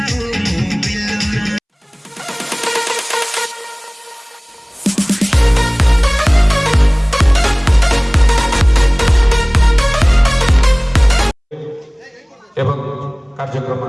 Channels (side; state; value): both; identical; correlation 1.00